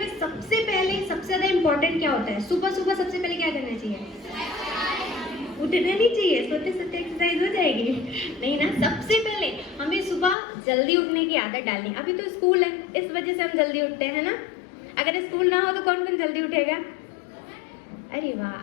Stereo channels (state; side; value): drops out; right; at 10.4 s